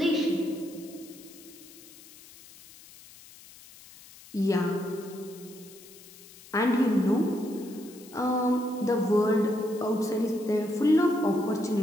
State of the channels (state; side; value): noise; left; hiss, 21 dB below the sound